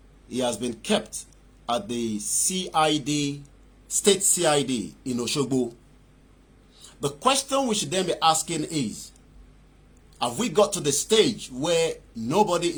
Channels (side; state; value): both; identical; correlation 1.00